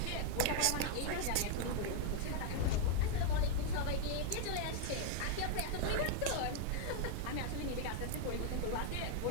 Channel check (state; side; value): different; both; correlation 0.00